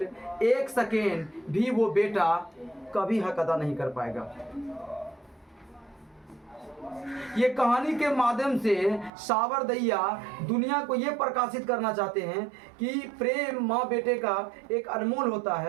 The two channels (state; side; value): drops out; left; at 9.1 s